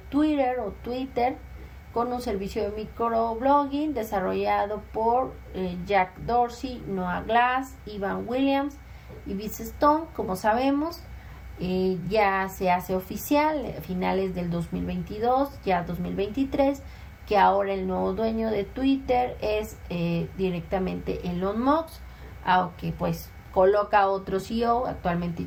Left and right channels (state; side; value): identical; both; correlation 1.00